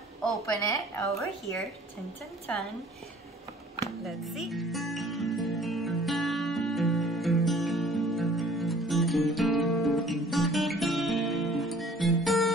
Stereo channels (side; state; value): both; normal; correlation 0.52